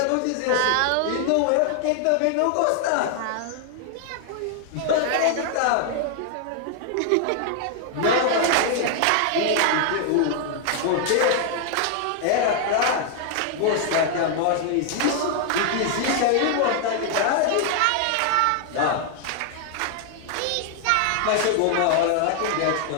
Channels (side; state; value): both; different; correlation 0.00